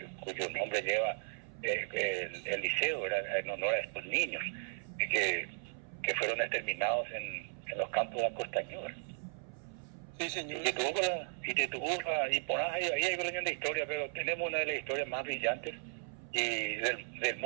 cuyo nombre lleva el liceo, era en honor a estos niños que fueron exterminados en los campos de Costañú. Sí, señor. Y por ahí hay una de historia, pero tenemos una de las historias más brillantes y del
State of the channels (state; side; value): silent; left; 54 dB below the other